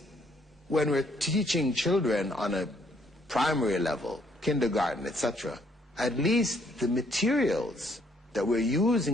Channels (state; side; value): normal; both; correlation 0.68